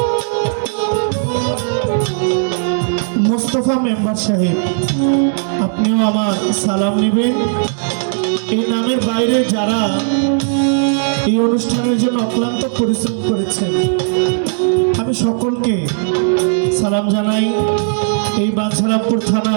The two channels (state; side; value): silent; left; digital silence